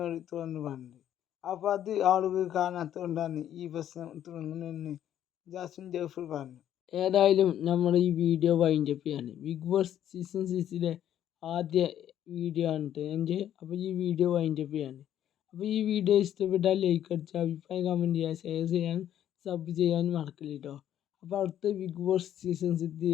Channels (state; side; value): quieter; right; 10.9 dB